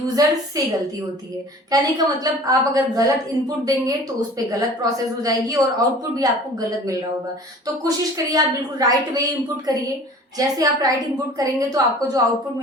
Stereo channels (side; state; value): both; normal; correlation 0.45